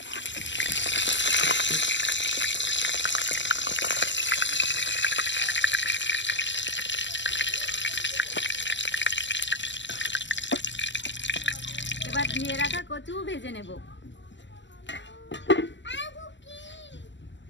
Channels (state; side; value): late; right; 0.53 ms